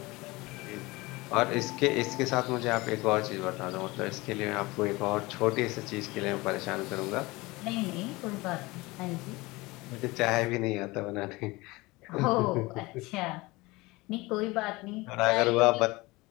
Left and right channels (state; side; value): quieter; right; 22.3 dB